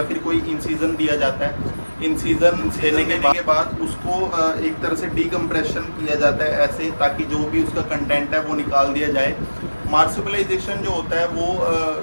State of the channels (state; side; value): inverted; both; correlation -1.00